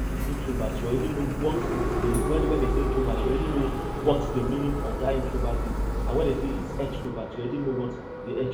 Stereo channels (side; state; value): both; identical; correlation 1.00